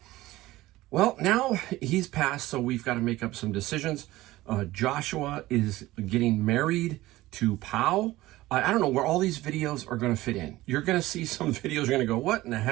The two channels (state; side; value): quieter; left; 17.4 dB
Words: Well, now he's passed, so we've got to make up some decisions. Joshua is getting married to Pau. I don't know where all these videos are going to fit in. You're going to see some videos, you're going to go, what in the